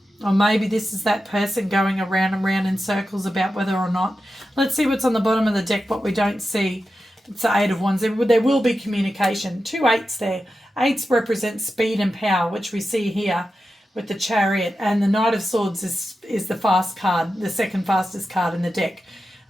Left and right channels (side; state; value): both; normal; correlation 0.91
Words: Or maybe this is that person going around and round in circles about whether or not. Let's see what's on the bottom of the deck, what we don't see. It's the Eight of Wands. There will be communication. 2 8s there. 8s represent speed and power, which we see here with the Chariot. And the Knight of Swords is the fast card, the second fastest card in the deck.